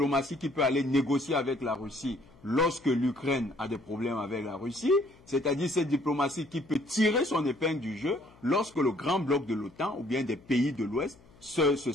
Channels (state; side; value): noise; left; hum, 26 dB below the sound